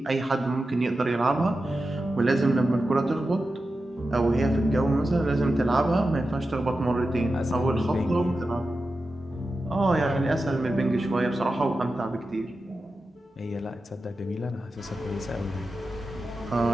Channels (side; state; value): both; normal; correlation 0.91